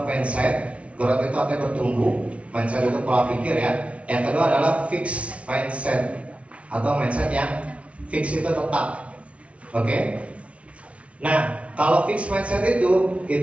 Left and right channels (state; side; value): late; left; 0.063 ms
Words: mindset. Growth itu artinya bertumbuh. Mindset itu pola pikir ya. Yang kedua adalah fixed mindset atau mindset yang fix itu tetap. Oke? Nah, kalau fixed mindset